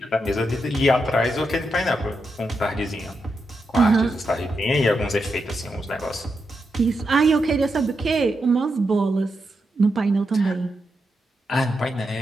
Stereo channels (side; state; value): both; normal; correlation 0.85